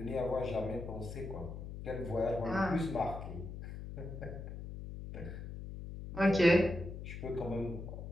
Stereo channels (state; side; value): noise; left; hum, 9 dB below the sound